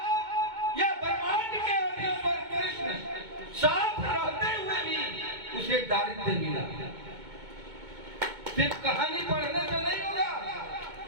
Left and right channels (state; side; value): late; left; 2.2 ms